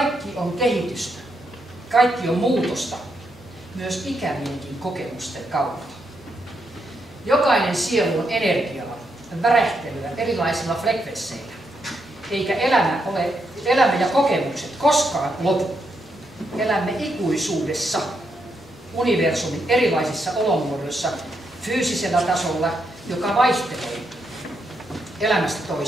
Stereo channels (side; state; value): both; normal; correlation 0.80